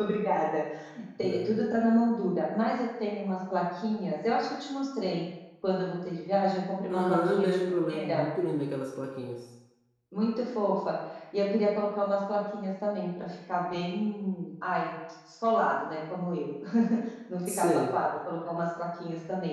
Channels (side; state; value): both; identical; correlation 1.00